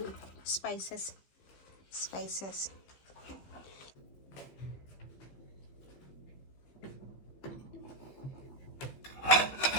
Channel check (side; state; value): right; late; 15 ms